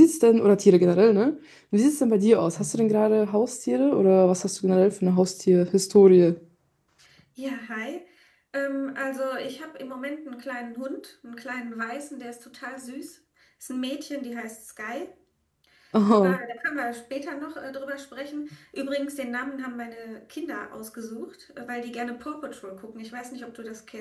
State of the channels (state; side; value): identical; both; correlation 1.00